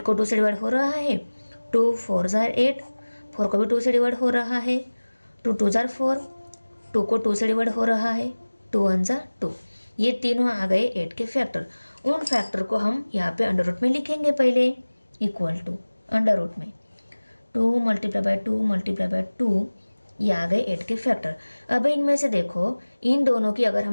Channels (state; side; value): inverted; both; correlation -1.00